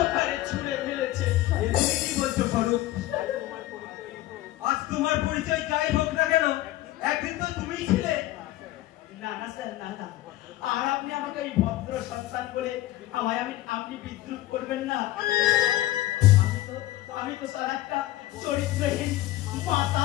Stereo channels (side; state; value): right; quieter; 15.9 dB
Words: তুমি কি বলছো স্বরূপ? আজ তোমার পরিচয় যাই হোক না কেন, একদিন তো তুমিই ছিলে। না না স্যার, না না, আর আপনি আমাকে এই ভদ্র সন্তান বলে আপনি বিদ্রুপ করবেন না। আমি তো স্যার একটা চরিত্রহীন